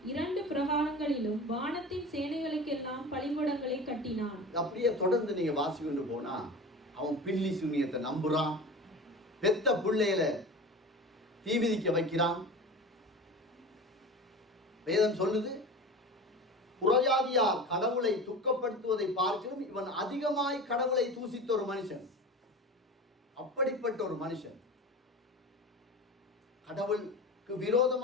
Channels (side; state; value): both; normal; correlation 0.33